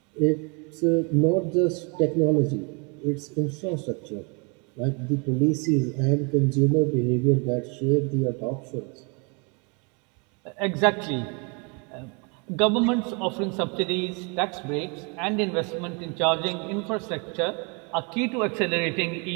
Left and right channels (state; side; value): quieter; left; 33.3 dB